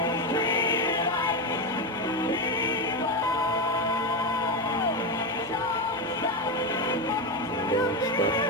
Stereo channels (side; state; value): both; normal; correlation 0.12